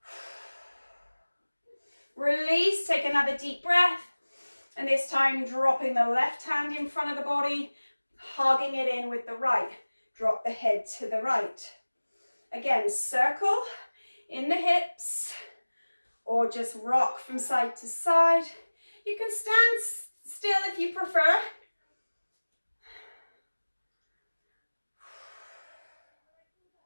Release, take another deep breath. And this time dropping the left hand in front of the body, hugging it in with the right. Drop the head to the right. Again, circle in the hips or just rock from side to side. You can stand still if you prefer.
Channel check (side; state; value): both; inverted; correlation -1.00